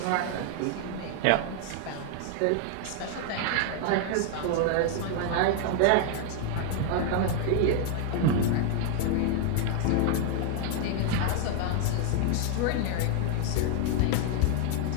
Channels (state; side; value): different; both; correlation 0.00